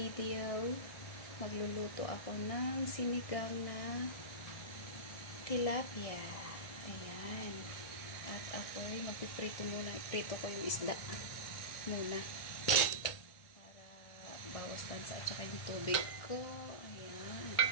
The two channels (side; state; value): right; late; 1.6 ms